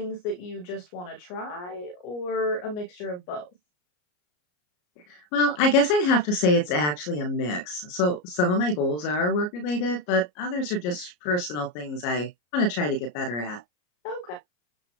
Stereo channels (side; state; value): right; late; 34 ms